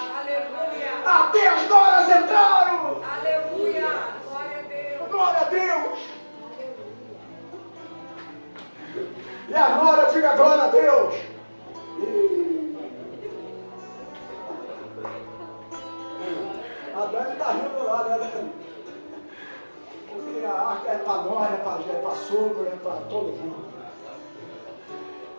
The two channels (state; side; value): inverted; both; correlation -1.00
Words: Aleluia. Até as noras entraram. Aleluia. Glória a Deus. Glória a Deus. E a nora diga glória a Deus. A Dani está rindo lá, né, Dani? Porque a arca é para nós, é para sogro, é para todo mundo.